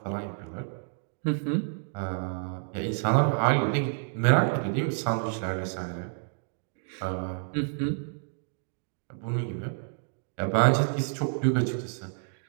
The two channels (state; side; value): silent; left; digital silence